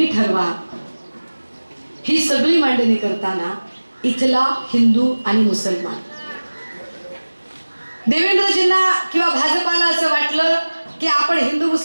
ठरवा. ही सगळी मांडणी करताना इथला हिंदू आणि मुसलमान. देवेंद्रजींना किंवा भाजपाला असं वाटलं की आपण हिंदू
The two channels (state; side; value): inverted; both; correlation -1.00